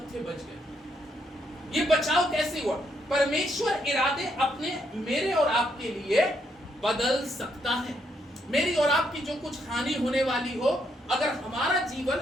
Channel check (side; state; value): both; normal; correlation 0.75